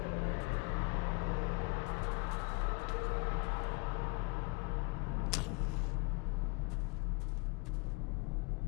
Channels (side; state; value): right; quieter; 30.5 dB